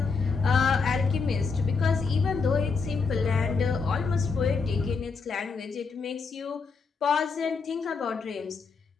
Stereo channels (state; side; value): quieter; right; 4.8 dB